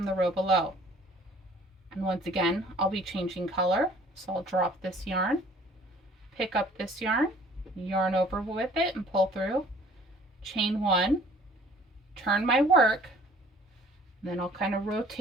the row below. And once again, I'll be changing color. So I'll drop this yarn, pick up this yarn, yarn over with it and pull through, chain 1, turn my work, then I'll kind of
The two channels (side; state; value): both; normal; correlation 0.54